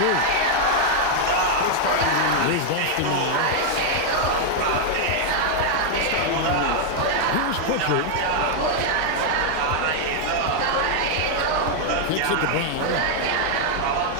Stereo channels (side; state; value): both; different; correlation 0.00